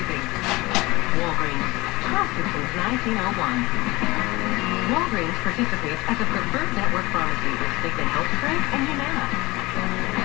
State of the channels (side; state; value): right; quieter; 21.9 dB